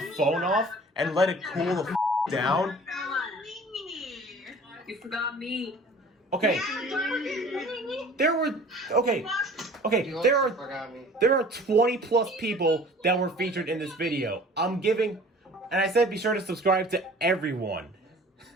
phone off and let it cool the down. You forgot me. Okay. There are 20 plus people that were featured in this video. I'm giving, and I said be sure to subscribe to everyone.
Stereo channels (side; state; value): both; normal; correlation 0.46